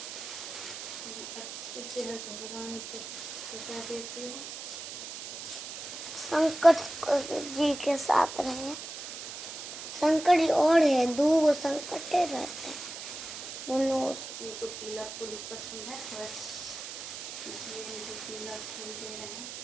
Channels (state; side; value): noise; right; hiss, 9 dB below the sound